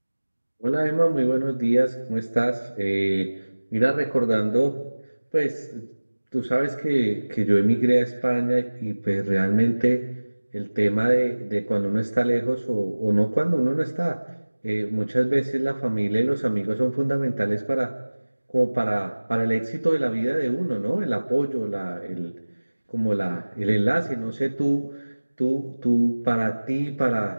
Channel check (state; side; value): inverted; both; correlation -1.00